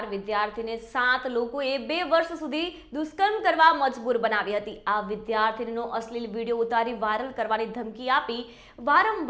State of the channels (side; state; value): both; identical; correlation 1.00